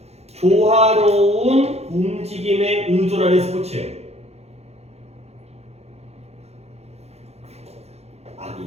조화로운 움직임에 의존하는 스포츠예요.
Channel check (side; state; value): left; late; 0.31 ms